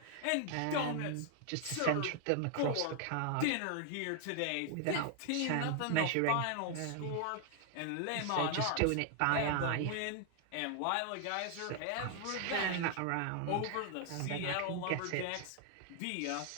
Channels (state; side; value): different; both; correlation 0.00